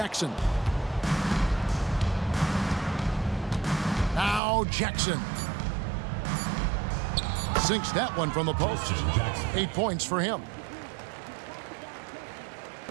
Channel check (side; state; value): left; drops out; at 4.4 s